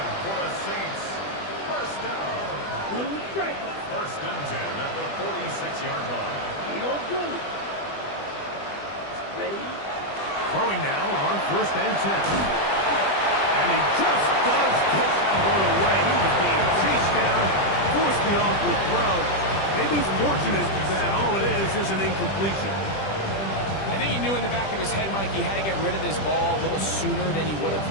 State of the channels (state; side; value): late; right; 20 ms